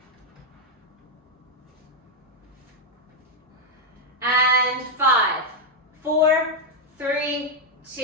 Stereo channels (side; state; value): both; normal; correlation 0.01